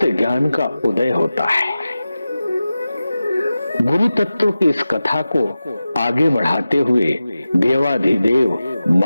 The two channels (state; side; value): inverted; both; correlation -0.95